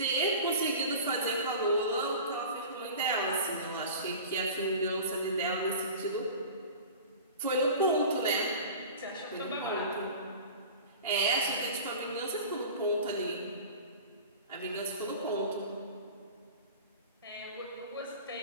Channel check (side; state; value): both; inverted; correlation -0.36